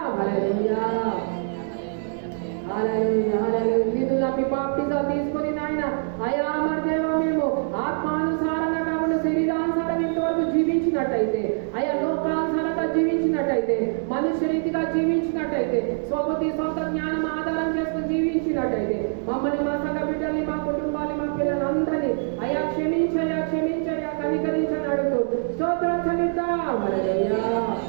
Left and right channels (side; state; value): left; silent; digital silence